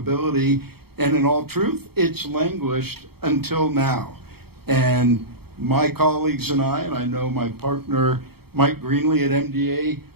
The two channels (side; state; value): left; late; 0.96 ms